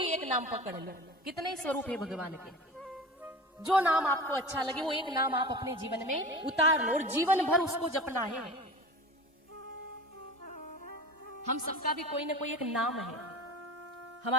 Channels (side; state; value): both; normal; correlation 0.34